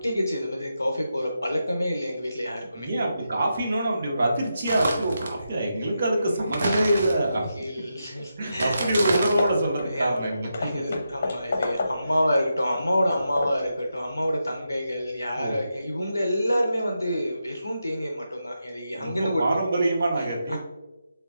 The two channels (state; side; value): inverted; both; correlation -0.86